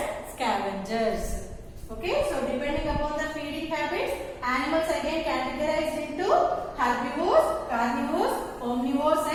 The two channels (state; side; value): identical; both; correlation 1.00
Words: scavengers. Okay, so depending upon the feeding habits, animals again categorized into herbivores, carnivores, omnivores